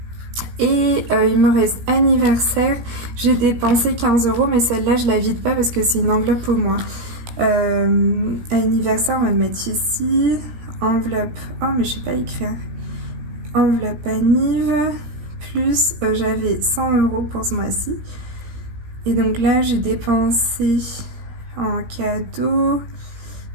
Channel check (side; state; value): left; late; 16 ms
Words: Et il me reste anniversaire, j'ai dépensé 15 €, mais celle-là je la vide pas parce que c'est une enveloppe au moins. Anniversaire, on va le mettre ici. Enveloppe, oh mais je sais pas écrire. Enveloppe anniv, plus j'avais 100 € pour ce mois-ci. Et donc là j'ai dépensé en cadeau,